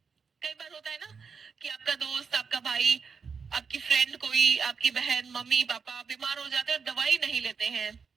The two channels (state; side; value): quieter; left; 5.7 dB